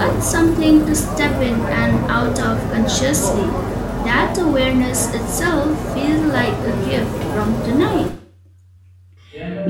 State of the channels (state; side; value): identical; both; correlation 1.00